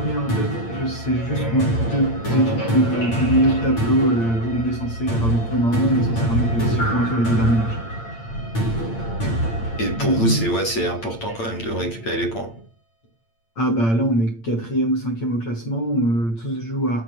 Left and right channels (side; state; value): right; late; 8.8 ms